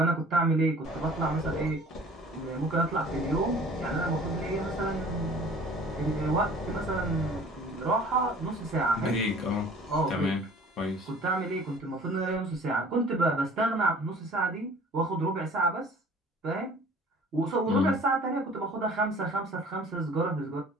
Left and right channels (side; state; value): both; normal; correlation 0.48